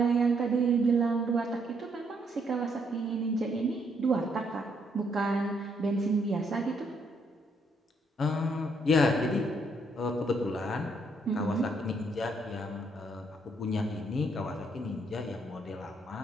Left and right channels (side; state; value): both; normal; correlation 0.72